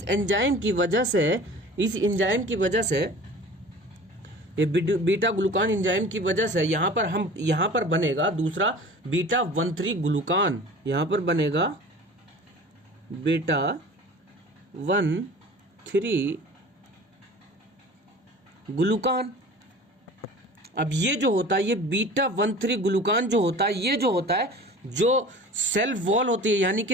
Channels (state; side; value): normal; both; correlation 0.41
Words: एंजाइम की वजह से ये बीटा ग्लूकान एंजाइम की वजह से यहाँ पर बनेगा दूसरा बीटा 1,3 ग्लूकान। यहाँ पर बनेगा बीटा 1,3 ग्लूकान। अब ये जो होता है, ये बीटा 1,3 ग्लूकान जो होता है, ये जो होता है जो सेल वॉल होती है, यानी